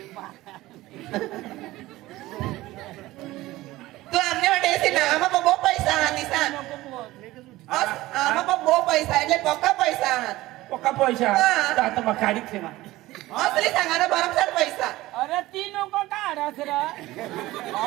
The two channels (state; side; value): quieter; left; 17.7 dB